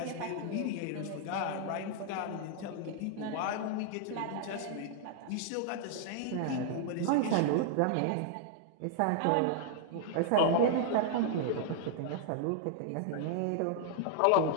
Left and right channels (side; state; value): both; different; correlation -0.01